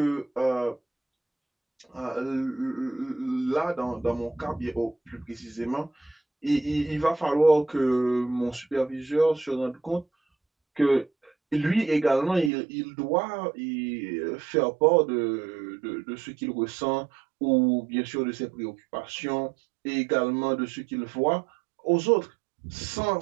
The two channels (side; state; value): left; drops out; at 12.5 s